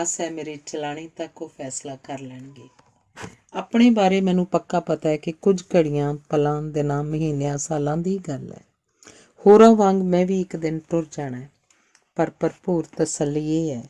ਹੈ ਮੇਰੇ ਚਲਾਣੇ ਤੱਕ ਉਹ ਫੈਸਲਾ ਕਰ ਲੈਣਗੇ। ਆਪਣੇ ਬਾਰੇ ਮੈਨੂੰ ਪੱਕਾ ਪਤਾ ਹੈ ਕਿ ਕੁਝ ਘੜੀਆਂ, ਪਲਾਂ, ਦਿਨਾਂ, ਮਹੀਨਿਆਂ, ਸਾਲਾਂ ਦੀ ਗੱਲ ਹੈ। ਹੋਰਾਂ ਵਾਂਗ ਮੈਂ ਵੀ ਇੱਕ ਦਿਨ ਟੁਰ ਜਾਣਾ ਹੈ, ਪਰ ਭਰਪੂਰ ਤਸੱਲੀ ਇਹ ਹੈ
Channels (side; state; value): both; identical; correlation 1.00